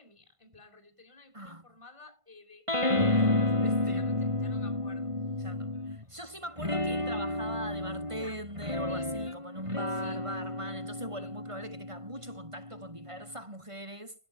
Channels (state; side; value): late; left; 1.5 ms